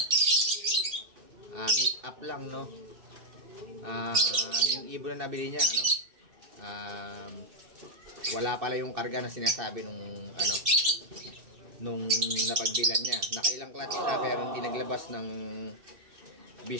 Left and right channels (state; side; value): late; left; 2.6 ms